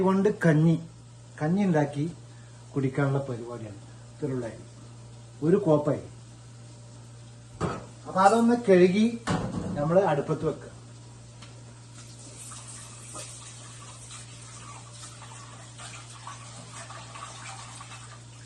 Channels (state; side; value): identical; both; correlation 1.00